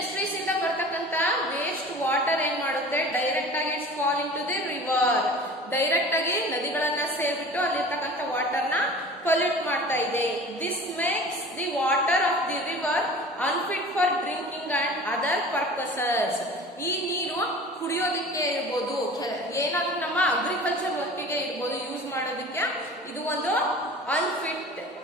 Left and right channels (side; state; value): both; normal; correlation 0.41